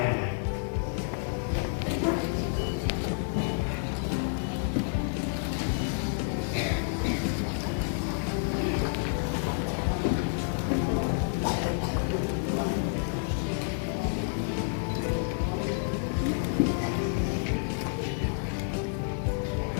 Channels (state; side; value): silent; right; digital silence